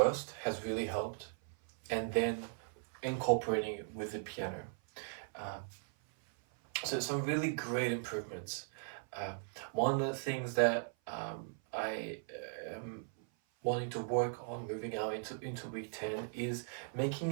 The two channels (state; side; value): silent; left; 52 dB below the other